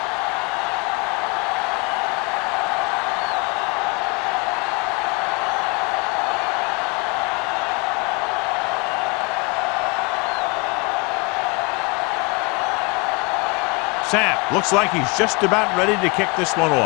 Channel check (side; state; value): right; quieter; 29.2 dB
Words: Sapp looks like he's just about ready to kick this one